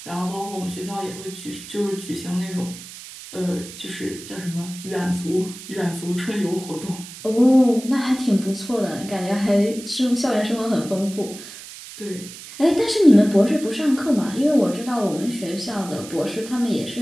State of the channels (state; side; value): noise; right; hiss, 14 dB below the sound